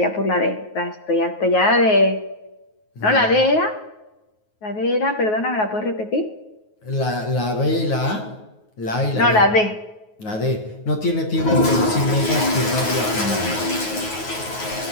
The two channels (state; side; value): late; right; 9.4 ms